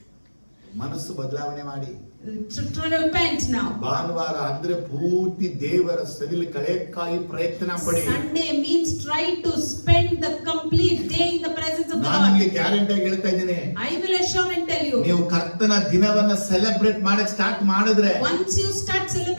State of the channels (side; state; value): both; inverted; correlation -1.00